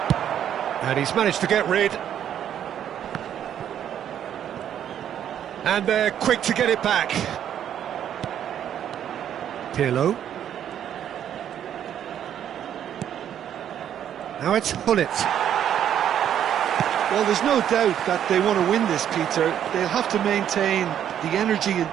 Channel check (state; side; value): quieter; left; 9.9 dB